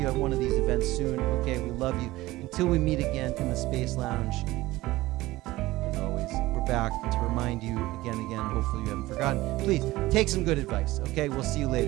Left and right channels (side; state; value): left; quieter; 18.2 dB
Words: at one of these events soon. Okay, we love you. Until we meet again in the Space Lounge, as always, we're back to remind you again. Hopefully you haven't forgotten. Please take some good advice. Okay, we'll see you